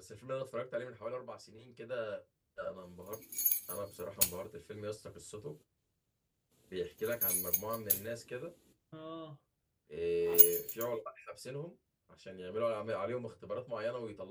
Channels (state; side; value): identical; both; correlation 1.00